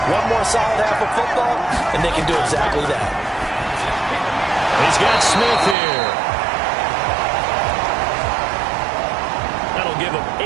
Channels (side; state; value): left; drops out; at 5.8 s